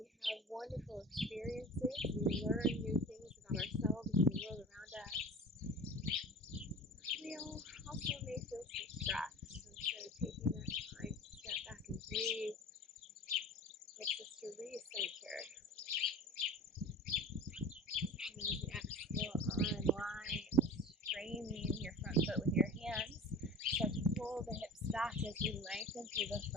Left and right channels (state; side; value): normal; both; correlation 0.37